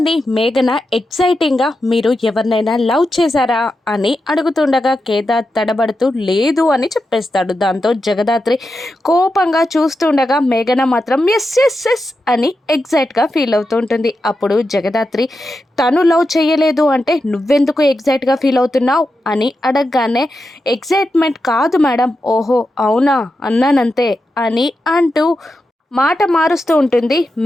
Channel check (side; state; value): both; normal; correlation 0.88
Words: మేఘన ఎక్సైటింగ్గా మీరు ఎవరినైనా లవ్ చేశారా అని అడుగుతుండగా కేదార్ తడబడుతూ లేదు అని చెప్పేస్తాడు. దాంతో జగదాత్రి కోపంగా చూస్తుండగా మేఘన మాత్రం ఎస్ ఎస్ ఎస్ అని ఎగ్జైట్గా ఫీల్ అవుతూ ఉంటుంది. అప్పుడు జగదాత్రి తను లవ్ చేయలేదు అంటే నువ్వెందుకు ఎగ్జైట్గా ఫీల్ అవుతున్నావు అని అడగగానే ఎగ్జైట్మెంట్ కాదు మేడం, ఓహో అవునా అన్నానంతే అని అంటూ మాట మారుస్తూ ఉంటుంది